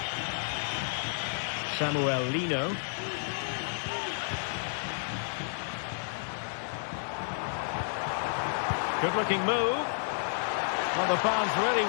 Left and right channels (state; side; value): silent; right; digital silence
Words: Samuel Lino. Good-looking move. Well, the fans really